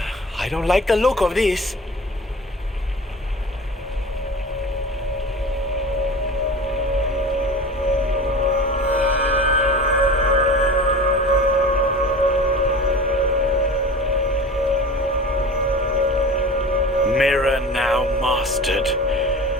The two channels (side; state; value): both; normal; correlation 0.35